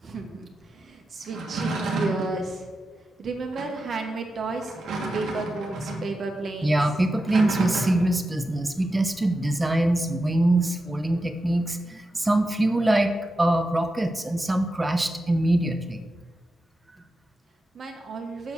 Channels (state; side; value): normal; both; correlation 0.90